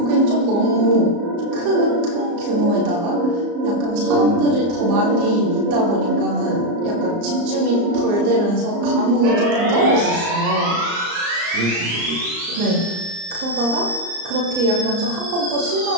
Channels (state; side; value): late; left; 34 ms